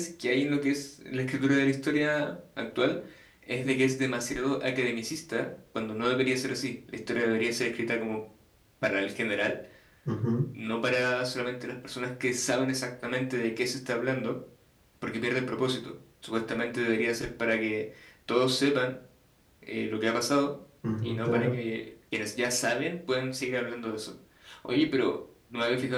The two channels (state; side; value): identical; both; correlation 1.00